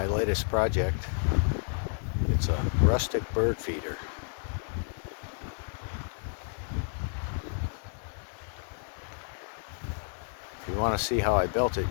latest project. It's a rustic bird feeder. If you want to see how I built it,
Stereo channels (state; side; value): silent; right; digital silence